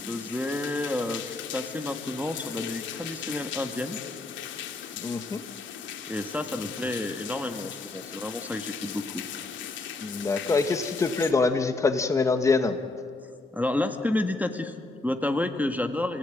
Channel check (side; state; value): right; quieter; 3.0 dB